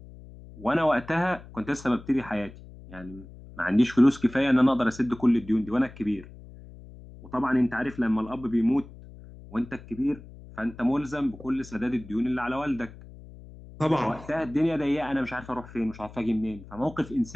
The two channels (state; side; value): noise; left; hum, 18 dB below the sound